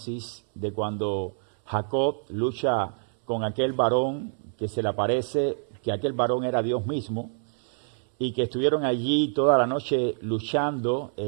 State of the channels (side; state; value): left; silent; 60 dB below the other